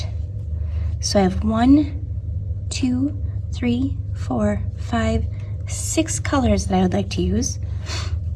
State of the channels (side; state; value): both; identical; correlation 1.00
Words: So I have 1, 2, 3, 4, 5, 6 colors that I would like to use.